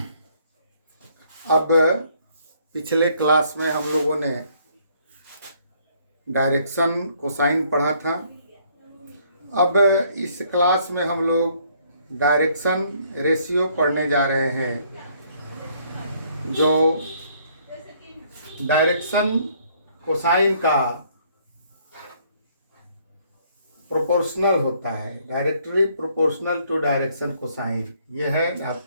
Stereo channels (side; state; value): both; inverted; correlation -0.65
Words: अब पिछले क्लास में हम लोगों ने डायरेक्शन कोसाइन पढ़ा था। अब इस क्लास में हम लोग डायरेक्शन रेशियो पढ़ने जा रहे हैं। जो डायरेक्शन कोसाइन का प्रोपोर्शनल होता है, directly proportional to direction cosine, यह है